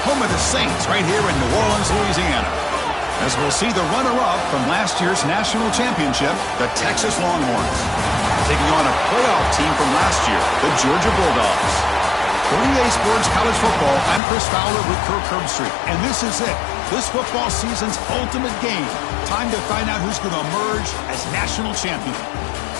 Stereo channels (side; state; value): right; drops out; at 14.2 s